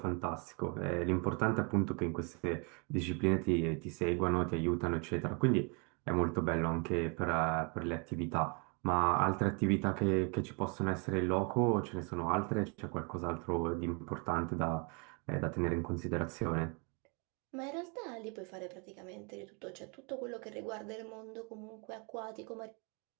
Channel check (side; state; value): left; quieter; 33.7 dB